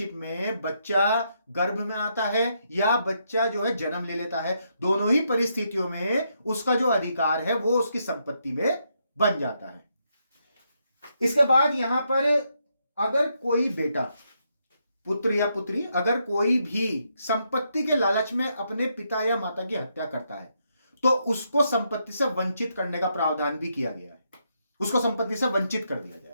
में बच्चा गर्भ में आता है या बच्चा जो है जन्म ले लेता है, दोनों ही परिस्थितियों में उसका जो अधिकार है वो उसकी संपत्ति में बन जाता है। इसके बाद यहां पर अगर कोई बेटा, पुत्र या पुत्री, अगर कोई भी संपत्ति के लालच में अपने पिता या माता की हत्या करता है तो उसको संपत्ति से वंचित करने का प्रावधान भी किया गया है, उसको संपत्ति से वंचित कर दिया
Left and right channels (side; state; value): both; inverted; correlation -0.79